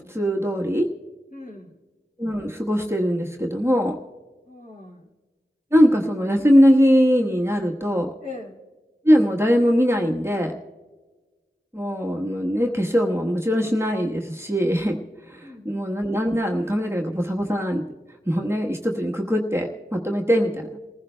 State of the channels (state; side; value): normal; both; correlation 0.92